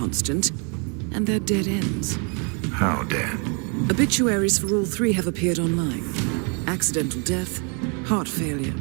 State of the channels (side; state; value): left; quieter; 36.6 dB